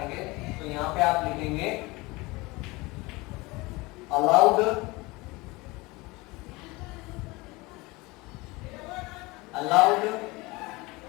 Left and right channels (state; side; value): quieter; right; 23.1 dB